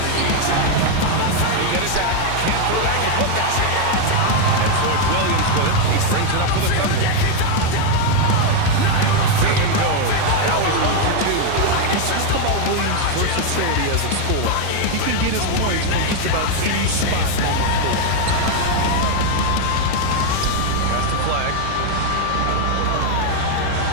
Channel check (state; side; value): different; both; correlation 0.01